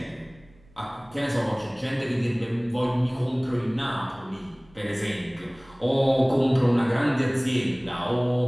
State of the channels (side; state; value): right; noise; rumble, 28 dB below the sound